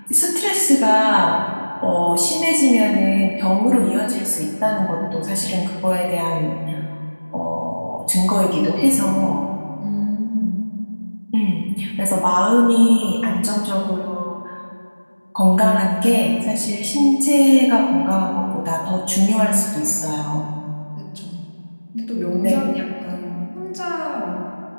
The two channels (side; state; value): both; inverted; correlation -1.00